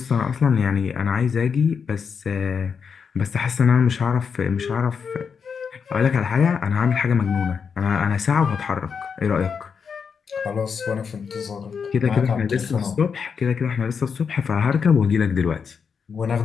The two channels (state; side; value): quieter; right; 6.2 dB